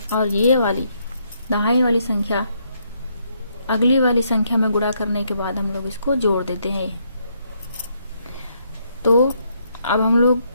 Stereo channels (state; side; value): inverted; both; correlation -0.74